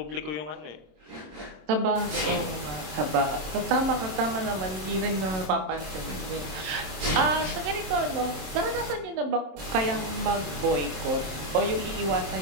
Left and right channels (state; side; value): late; left; 27 ms